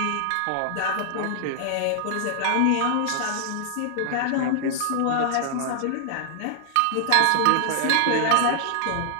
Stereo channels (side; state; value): both; different; correlation -0.01